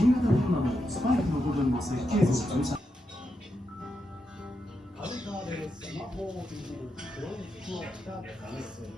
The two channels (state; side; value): normal; both; correlation 0.85